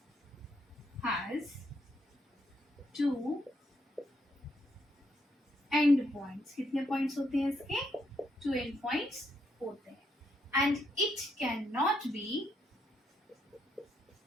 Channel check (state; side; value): normal; both; correlation 0.76